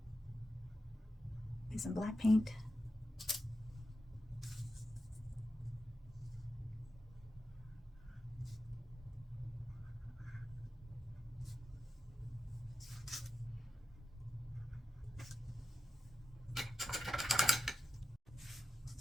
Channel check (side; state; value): both; normal; correlation 0.90